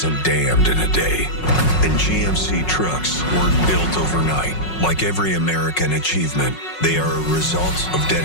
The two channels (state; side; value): late; right; 5.5 ms